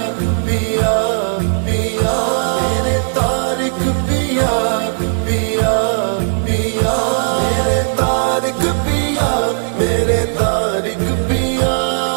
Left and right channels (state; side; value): silent; left; 64 dB below the other